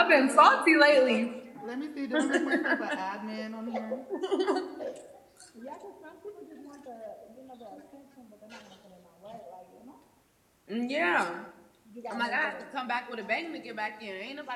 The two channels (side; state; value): both; identical; correlation 1.00